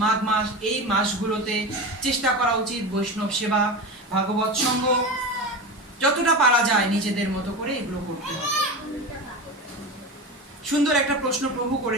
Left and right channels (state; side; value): normal; both; correlation 0.25